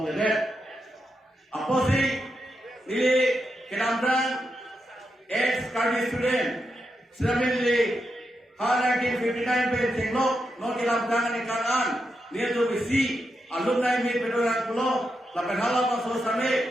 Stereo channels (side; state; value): both; normal; correlation 0.85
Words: apa sih ini kenamran ex Karbi student Ceremonial 1959 pe singlok no kilam tangan ikanan dia tu bisi alumni meet pedoran pulo lapan hala paso